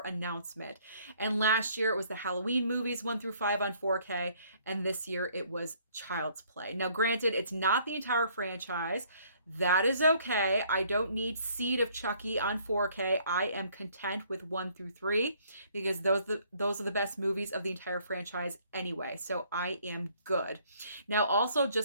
announcement. And last year it was the Halloween movies 1 through 5 on 4K, and this year it was Child's Play. Now, granted, it's not the entire franchise. That is okay. I don't need Seed of Chucky on 4K. I am content with 1 through 3 because those are the best movies of the entire franchise anyway. So I am good. Now, also,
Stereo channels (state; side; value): inverted; both; correlation -0.62